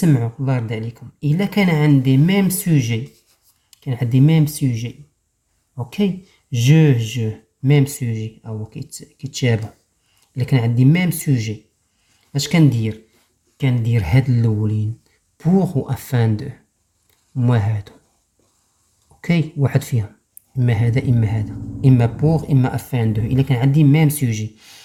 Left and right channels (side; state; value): both; identical; correlation 1.00